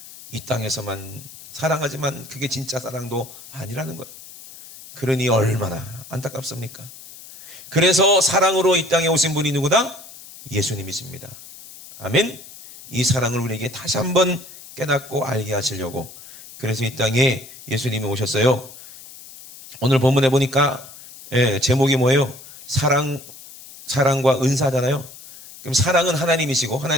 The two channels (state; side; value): noise; left; hiss, 17 dB below the sound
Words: 이 땅에서만 사랑하지만 그게 진짜 사랑도 아니라는 거예요. 그러니 얼마나 안타깝습니까? 그래서 사랑으로 이 땅에 오신 분이 누구다? 예수님이십니다. 아멘. 이 사랑을 우리에게 다시 한번 깨닫고 알게 하시려고, 그래서 이 땅에 예수님이 오셨어요. 오늘 본문에 보니까 제목이 뭐예요? 사랑과 은사잖아요. 그럼 사랑은 하나님이시고